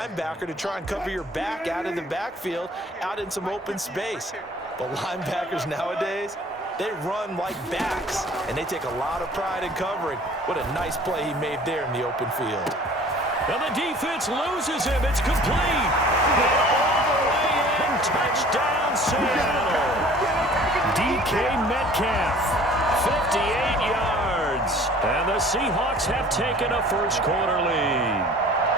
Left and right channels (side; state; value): both; normal; correlation 0.49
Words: to try and cover your back out in the backfield, out in some open space. The linebackers nowadays, they run like backs, and they take a lot of pride in covering. What a nice play he made there in the open field. And the defense loses him. It's complete. And all the way in, touchdown Seattle. DK Metcalf, 58 yards. And the Seahawks have taken a first quarter lead.